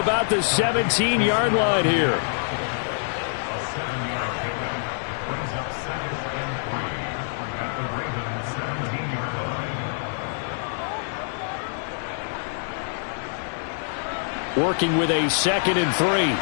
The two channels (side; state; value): right; silent; digital silence